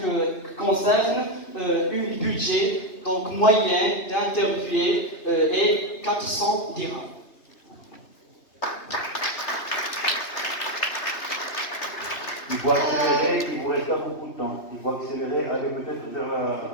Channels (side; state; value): right; late; 2.8 ms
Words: concerne un budget donc moyen d'interviewé est 400 dirhams. Il faut accélérer, il vous reste pas beaucoup de temps. Il faut accélérer, aller peut-être vers la